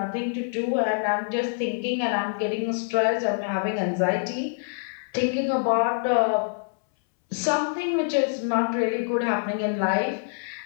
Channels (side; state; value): right; silent; 61 dB below the other